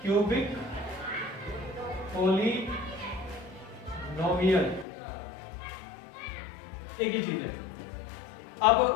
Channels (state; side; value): drops out; right; at 4.9 s